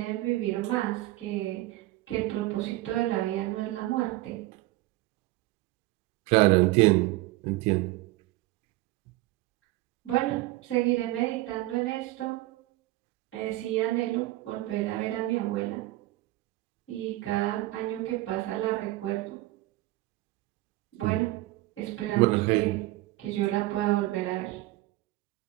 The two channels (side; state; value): left; quieter; 18.3 dB